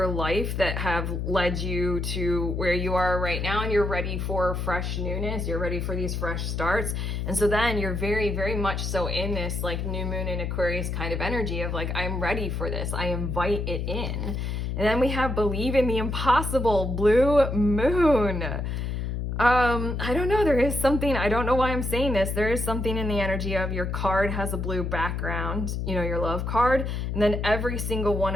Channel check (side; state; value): left; noise; hum, 2 dB below the sound